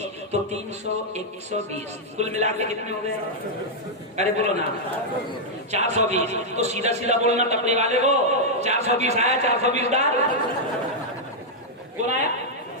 تو 300 120 کل ملا کے کتنے ہو گئے. ارے بولو نا 420, تو سیدھا سیدھا بولنا ٹپری والے کو 420 آیا, 420 ڈال. کون آیا,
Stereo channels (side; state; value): both; normal; correlation -0.04